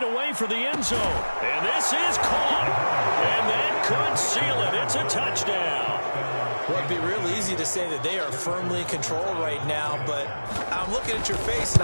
away for the end zone. And this is caught. And that could seal it. It's a touchdown. Well, it'd be real easy to say that they are firmly in control right now, but I'm looking at your face and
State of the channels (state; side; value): inverted; both; correlation -1.00